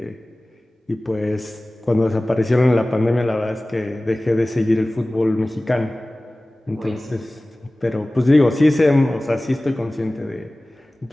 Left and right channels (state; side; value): normal; both; correlation 0.98